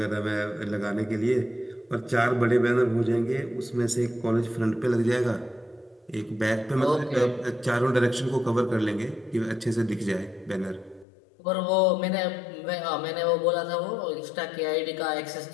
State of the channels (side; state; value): right; drops out; at 11.1 s